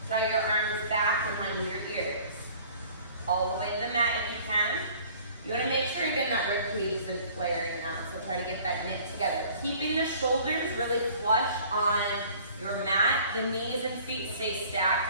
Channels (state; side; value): inverted; both; correlation -0.51